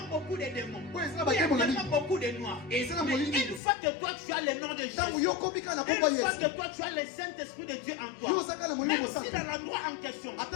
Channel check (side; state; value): right; drops out; at 3.6 s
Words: beaucoup de démons, Ouais, c'est là où il y a bakemo na tellement beaucoup de noirs. Et c'est là Mais molini. une fois que toi tu as le nom de Tango Jésus, yokomika na une komba fois Yesu. que toi tu as le Saint-Esprit de Dieu en Yo toi, saka na molimo même si mosaka. dans l'endroit en question,